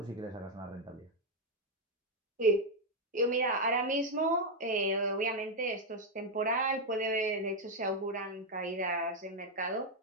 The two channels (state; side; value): normal; both; correlation 0.02